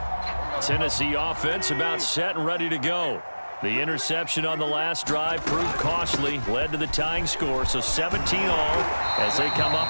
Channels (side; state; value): both; inverted; correlation -1.00